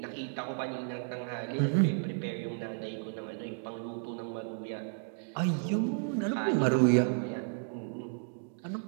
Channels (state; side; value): silent; left; digital silence